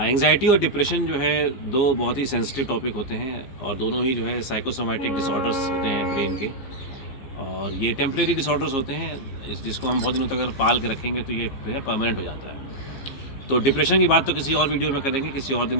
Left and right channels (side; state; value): right; late; 15 ms